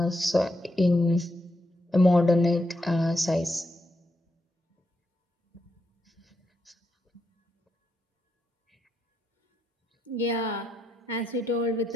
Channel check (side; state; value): both; normal; correlation 0.82